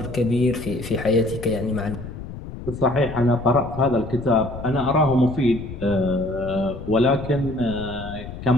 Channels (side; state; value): left; noise; rumble, 11 dB below the sound